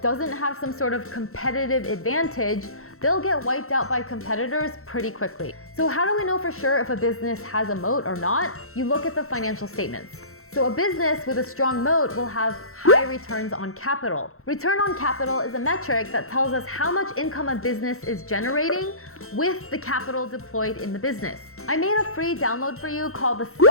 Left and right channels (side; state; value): right; late; 0.63 ms